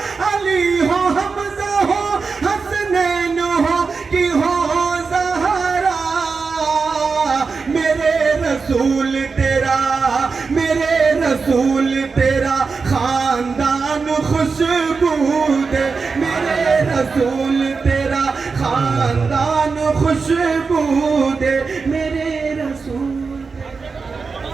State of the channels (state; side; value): quieter; left; 4.8 dB